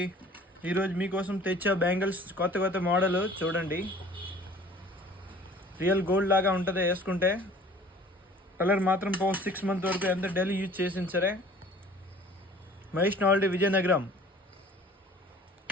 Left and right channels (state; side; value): normal; both; correlation 0.49